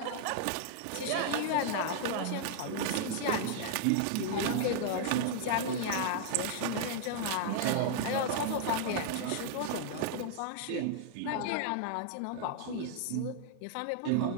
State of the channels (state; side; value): different; both; correlation -0.01